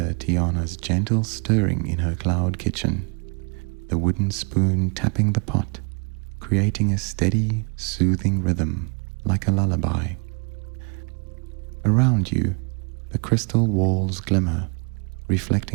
Tiana's gentle stirring in her cloud kitchen, the wooden spoon tapping the pot, creating a steady, soothing rhythm like a lullaby. Around you, the crystal walls glimmer,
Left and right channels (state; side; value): quieter; left; 35.1 dB